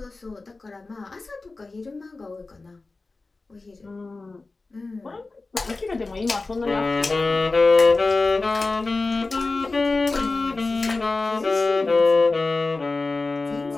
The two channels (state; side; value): quieter; right; 3.5 dB